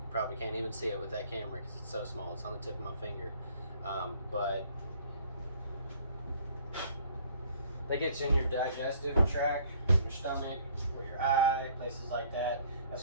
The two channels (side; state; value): both; inverted; correlation -0.57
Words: Probably can't even see it with that camera because it's so small. It's on the tip of my finger. But that gets in your digestive tract, your stomach, or your eye, places like that. That's